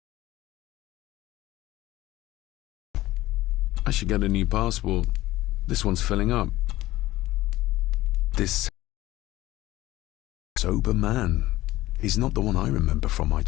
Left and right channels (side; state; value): right; quieter; 16.5 dB